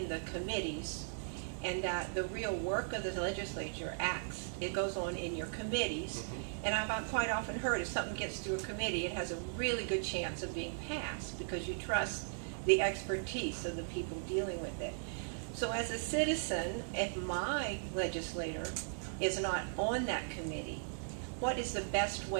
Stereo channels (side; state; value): left; silent; digital silence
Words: the committees, and that the real work of the legislature it goes on in your committees. And I've quite often heard if something gets through a committee, it has a really good chance of being passed because you trust the expertise of the people dealing with it. So as a citizen, if my legislator is not on that committee, what is the best